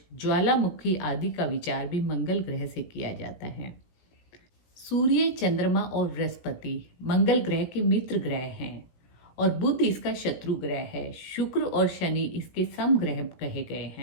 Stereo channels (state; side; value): late; right; 17 ms